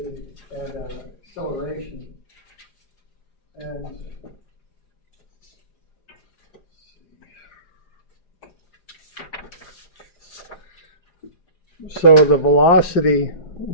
and acceleration. And so the velocity,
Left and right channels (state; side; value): late; right; 4.9 ms